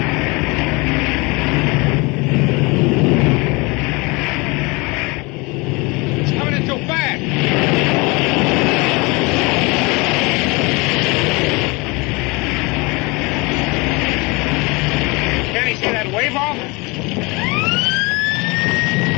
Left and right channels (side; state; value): right; quieter; 26.3 dB